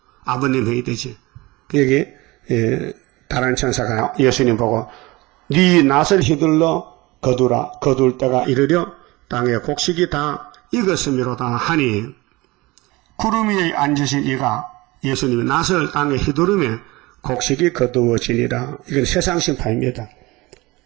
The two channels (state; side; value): quieter; left; 21.8 dB